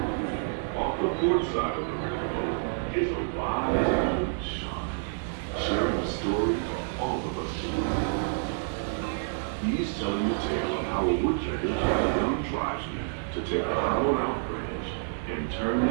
Port side of the rainbow is a wise old shaman, sharing a story for all of us to read. He's telling the tale of how a woodpecker taught a young tribesman to take a hollowed-out branch and turn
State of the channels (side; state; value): left; silent; digital silence